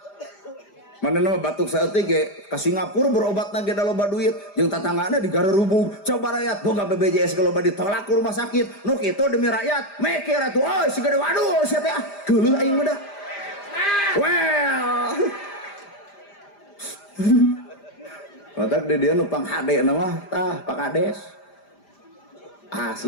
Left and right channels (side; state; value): right; late; 5.0 ms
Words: Mana nama batuk saeutik ge ka Singapura berobat ge da loba duit jeung tatanggana di Garerubung coba rakyat boga BPJS ge loba ditolak ke rumah sakit nu kitu demi rakyat mikir atuh euy si gede waduh sia teh geuleuh aing mah dah well matak di dieu nu pang hade na mah tah Pak Kades